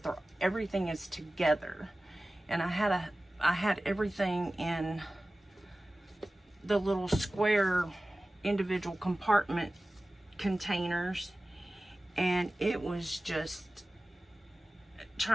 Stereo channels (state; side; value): normal; both; correlation 0.97